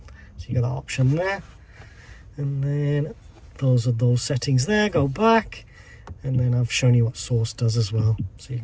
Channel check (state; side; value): identical; both; correlation 1.00